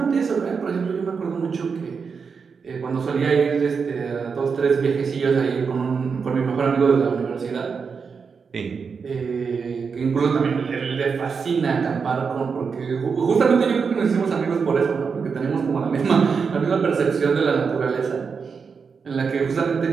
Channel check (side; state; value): left; quieter; 5.6 dB